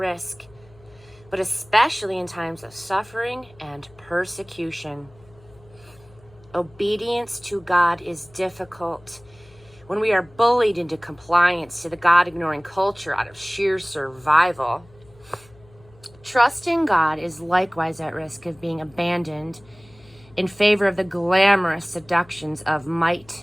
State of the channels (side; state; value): left; noise; hum, 26 dB below the sound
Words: but especially in times of suffering and persecution. Obedience to God is difficult when we are bullied into compliance to the God-ignoring culture out of sheer survival. Trusting God is likewise at risk of being abandoned in favor of the glamorous seductions of